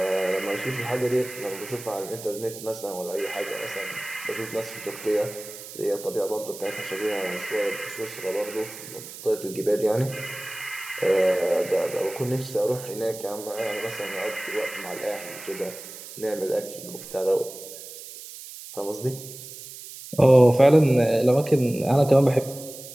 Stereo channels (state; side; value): noise; right; hiss, 13 dB below the sound